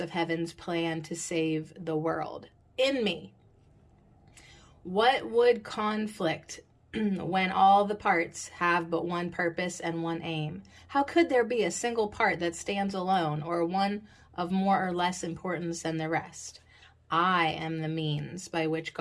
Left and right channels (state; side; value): identical; both; correlation 1.00